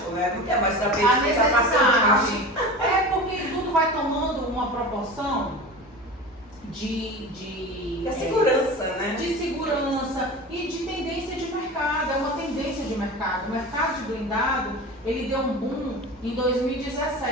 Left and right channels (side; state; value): both; normal; correlation 0.32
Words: né? Não quer mais saber A de quem está passando. porque tudo vai tomando uma proporção de segurança, né? De segurança e de tendência de mercado. É uma tendência de mercado. O mercado de blindado, ele deu um boom em